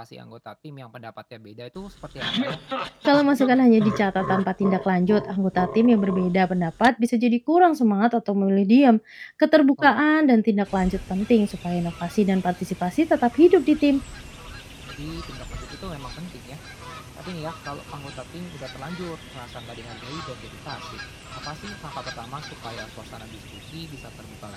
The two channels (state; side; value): identical; both; correlation 1.00